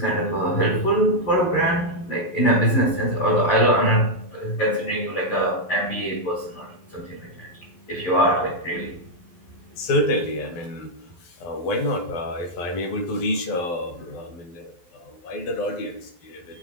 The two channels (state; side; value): late; right; 12 ms